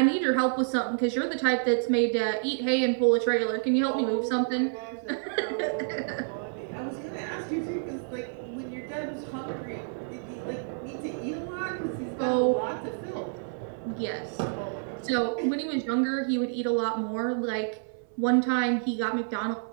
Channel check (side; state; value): left; silent; 59 dB below the other